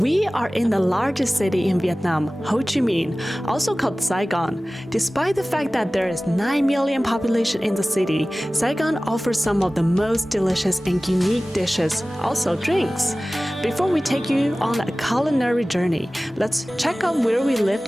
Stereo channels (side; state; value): both; normal; correlation 0.97